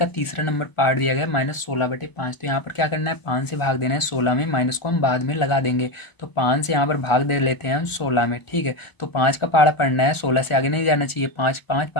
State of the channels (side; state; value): right; late; 1.0 ms